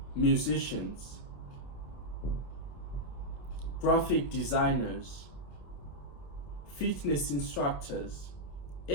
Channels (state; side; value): late; right; 28 ms